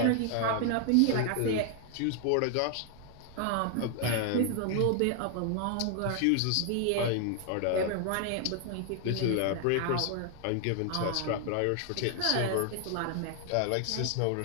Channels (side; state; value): both; different; correlation 0.00